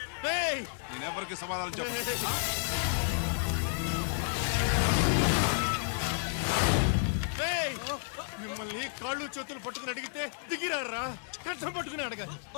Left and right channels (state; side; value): silent; right; 57 dB below the other